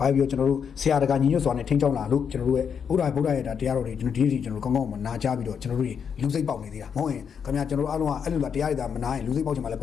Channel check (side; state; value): right; quieter; 7.1 dB